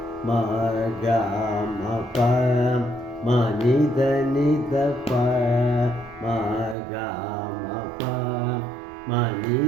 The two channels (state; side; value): drops out; left; at 6.8 s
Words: മ ഗ മ പ മ നിധ നിധ പ മ ഗ മ പ മ